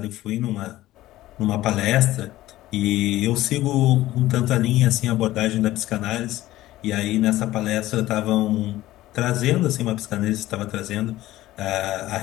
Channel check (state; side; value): quieter; right; 15.8 dB